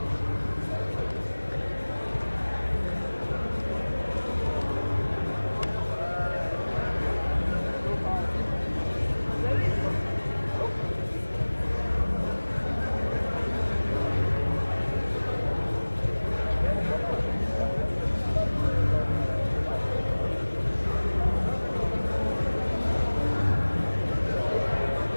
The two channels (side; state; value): both; inverted; correlation -1.00